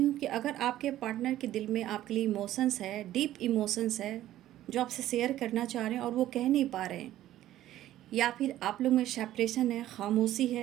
कि अगर आपके पार्टनर के दिल में आपके लिए इमोशंस है, डीप इमोशंस है, जो आपसे शेयर करना चाह रहे हैं और वो कह नहीं पा रहे हैं, या फिर आप लोग में सेपरेशन है, खामोशी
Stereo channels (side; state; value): left; quieter; 13.6 dB